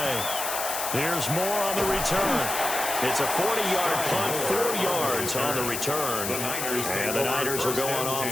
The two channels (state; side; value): noise; left; hiss, 3 dB below the sound